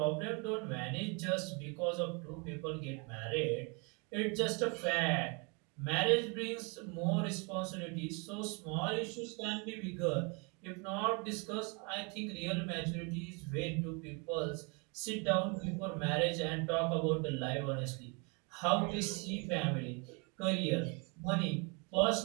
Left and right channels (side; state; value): left; quieter; 32.7 dB